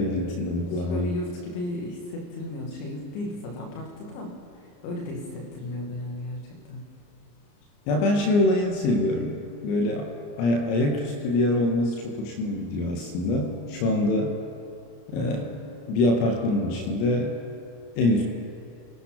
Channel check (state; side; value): late; right; 34 ms